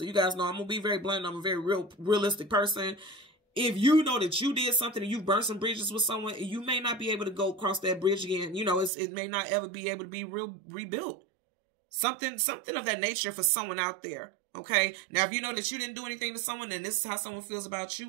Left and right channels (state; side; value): drops out; left; at 8.9 s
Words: you guys know I'm going to be very blunt. I'm a very realistic person. If you know that you did something and you burned some bridges with someone, you may not be able to go across that bridge again. You know, it may not ever be able to be rebuilt. Something of that nature for someone out there. Okay. Now, if you know that you didn't do anything to someone, then this is how someone feels about